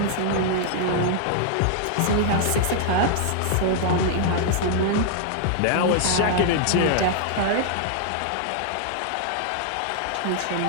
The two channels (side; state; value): both; different; correlation -0.01